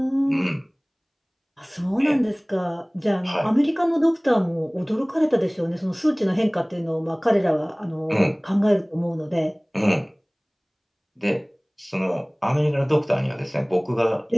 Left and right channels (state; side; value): identical; both; correlation 1.00